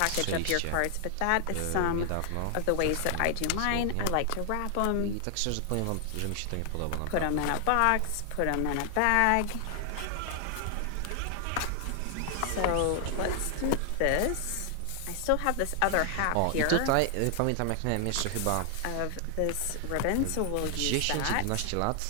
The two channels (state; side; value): different; both; correlation 0.00